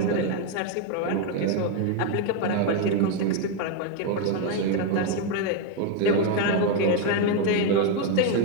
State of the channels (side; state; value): both; different; correlation 0.02